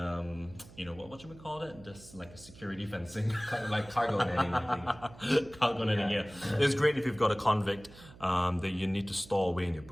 what should we call it? Just like a security fencing. Kind of like cargo netting, I think. Cargo netting, yeah. It's great if you've got a convict that you need to store away in your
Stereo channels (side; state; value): right; noise; hum, 20 dB below the sound